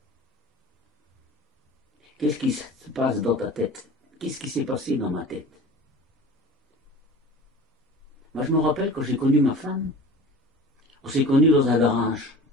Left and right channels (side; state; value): both; normal; correlation 0.39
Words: qu'est-ce qui se passe dans ta tête? Qu'est-ce qui s'est passé dans ma tête? Moi, je me rappelle quand j'ai connu ma femme, on s'est connus dans un garage.